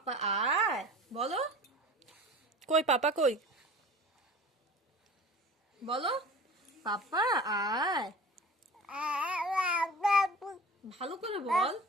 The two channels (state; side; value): normal; both; correlation 0.39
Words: আয় বলো, কই পাপা কই? বলো পাপা আয়, ভালো করে বল।